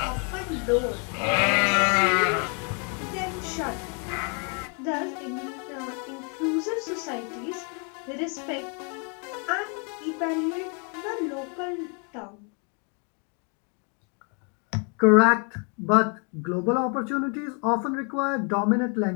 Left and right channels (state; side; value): quieter; right; 37.5 dB